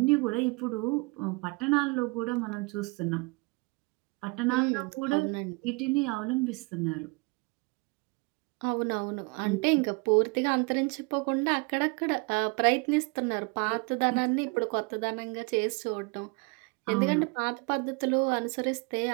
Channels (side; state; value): left; quieter; 28.8 dB